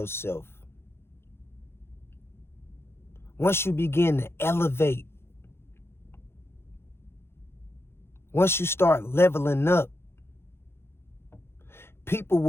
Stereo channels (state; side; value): late; right; 0.12 ms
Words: Once you begin to elevate, once you start leveling up, people